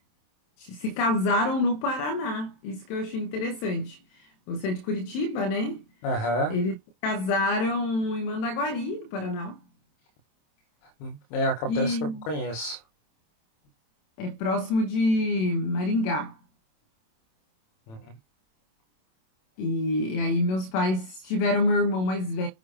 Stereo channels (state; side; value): late; right; 27 ms